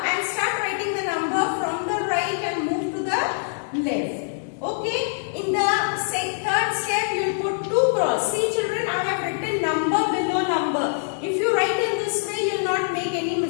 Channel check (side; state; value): right; silent; digital silence